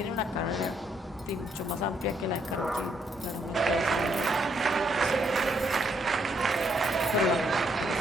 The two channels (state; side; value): normal; both; correlation 0.73